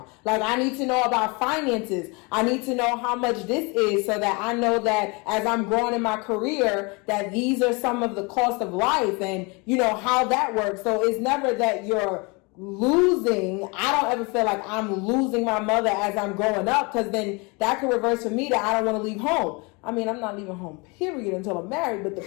Like, I need to know about finances. I need to know how much this is so that I know that as I'm growing in my career, that these are some of the cost of life and how that works. So it's never that you're losing. I don't ever feel like I'm losing my mother as I'm growing up, because then that could reverse for me that I don't want to leave home. I mean, I'm not leaving home, period, until I'm married. But the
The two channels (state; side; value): quieter; right; 29.0 dB